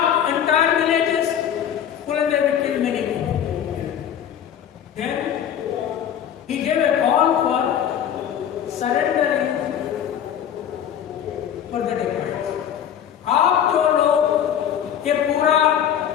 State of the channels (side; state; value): right; quieter; 9.5 dB